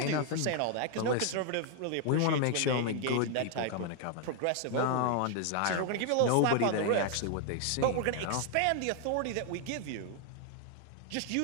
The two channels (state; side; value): different; both; correlation 0.00